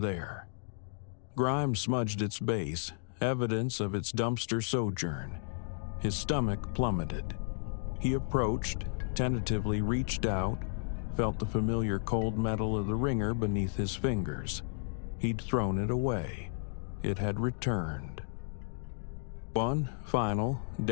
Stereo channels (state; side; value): silent; right; digital silence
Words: Grime smudged its base, evidence of its dumpster sojourn. His stomach plummeted. He approached, tentatively reached out, felt the familiar cold metal of the ringer beneath his fingers. He'd thrown it away. It had returned. One final,